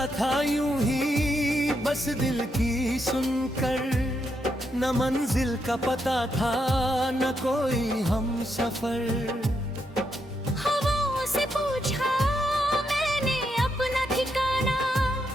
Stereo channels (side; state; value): both; normal; correlation 0.81